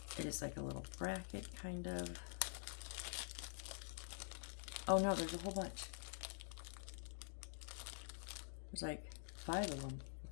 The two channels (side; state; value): right; silent; digital silence